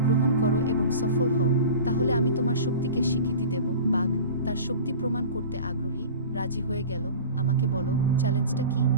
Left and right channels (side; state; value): both; inverted; correlation -0.36